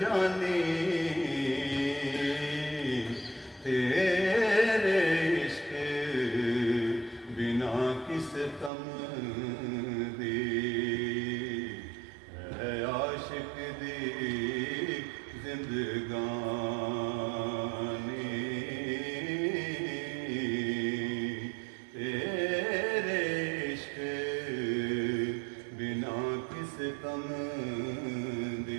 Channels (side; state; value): left; drops out; at 8.7 s